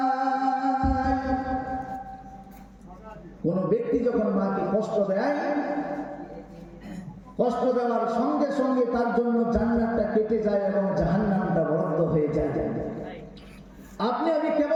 কোন ব্যক্তি যখন মাকে কষ্ট দেয়, কষ্ট দেওয়ার সঙ্গে সঙ্গে তার জন্য জান্নাতটা কেটে যায় এবং জাহান্নামটা বদ্ধ হয়ে যায়। আপনি আমি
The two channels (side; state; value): both; identical; correlation 1.00